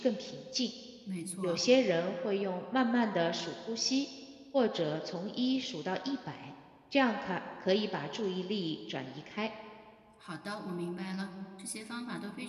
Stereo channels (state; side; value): identical; both; correlation 1.00